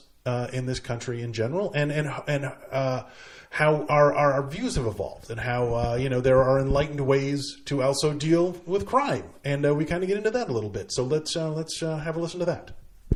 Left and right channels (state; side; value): identical; both; correlation 1.00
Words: in this country in general, and how our views have evolved, and how there are enlightened ways to also deal with crime, and we kind of get into that a little bit. So let's have a listen to that.